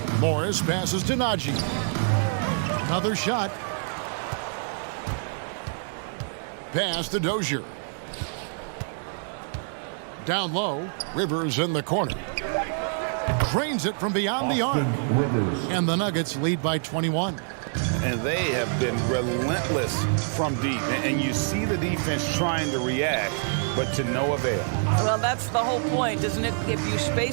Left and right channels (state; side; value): silent; left; digital silence